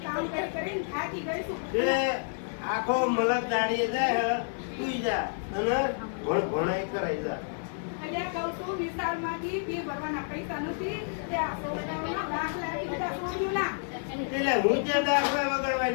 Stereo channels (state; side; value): silent; right; digital silence